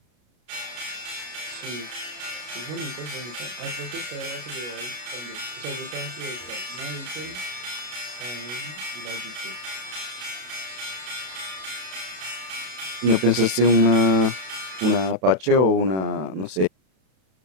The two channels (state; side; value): late; left; 32 ms